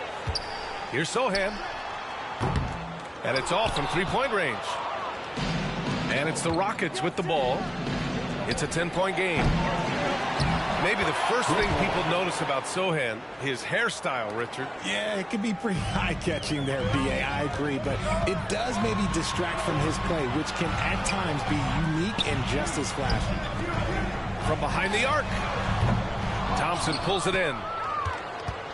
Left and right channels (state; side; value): identical; both; correlation 1.00